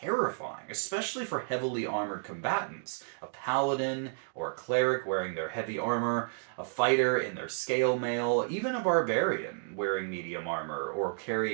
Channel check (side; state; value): left; silent; digital silence